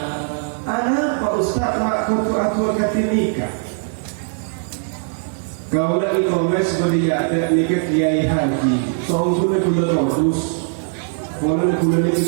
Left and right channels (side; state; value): left; silent; 64 dB below the other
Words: kau dah e-commerce seperti ada nikah kiai haji, soal sudah gula terus, orang gula ni